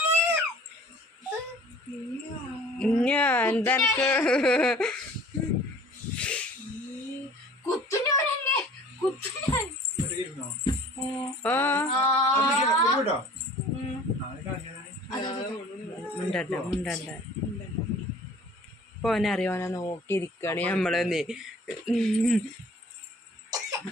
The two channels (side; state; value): both; normal; correlation 0.48